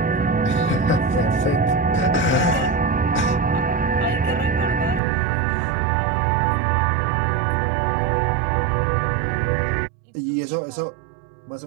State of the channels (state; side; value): drops out; left; at 5.0 s